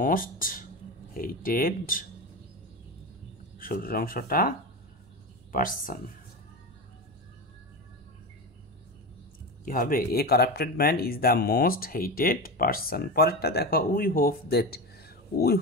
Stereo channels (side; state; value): both; normal; correlation 0.21